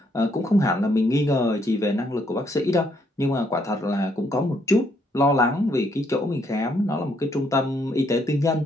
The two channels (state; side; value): normal; both; correlation 0.72